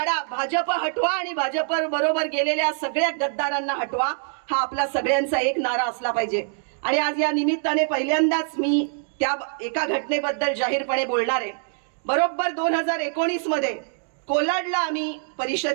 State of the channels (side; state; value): left; silent; digital silence